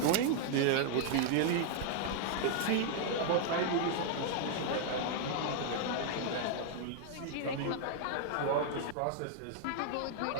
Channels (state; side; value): different; both; correlation 0.00